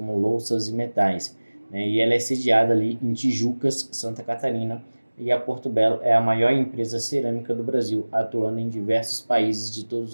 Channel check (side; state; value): both; inverted; correlation -1.00